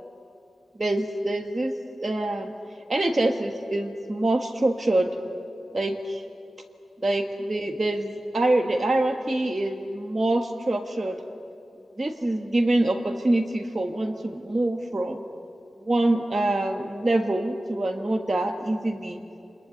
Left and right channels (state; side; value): normal; both; correlation 0.95